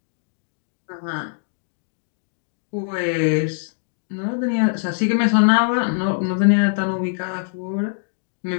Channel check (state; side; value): silent; right; digital silence